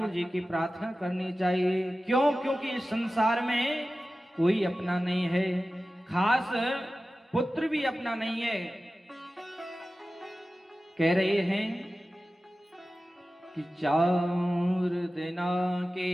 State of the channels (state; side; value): normal; both; correlation 0.95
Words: जी की प्रार्थना करनी चाहिए। क्यों? क्योंकि इस संसार में कोई अपना नहीं है, खास पुत्र भी अपना नहीं है। कह रहे हैं कि 4 दिना के